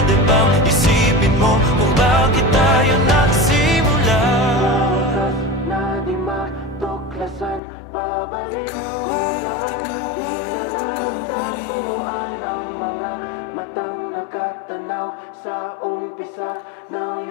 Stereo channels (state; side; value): drops out; right; at 7.6 s